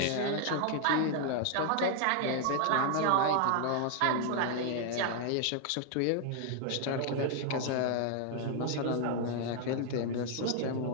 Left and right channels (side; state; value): both; different; correlation 0.00